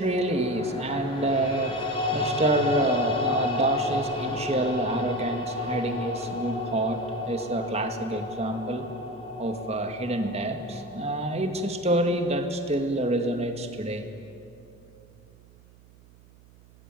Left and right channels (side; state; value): right; noise; hum, 26 dB below the sound